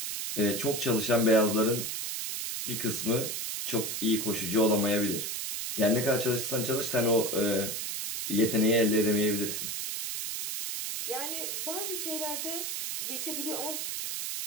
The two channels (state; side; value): noise; right; hiss, 3 dB below the sound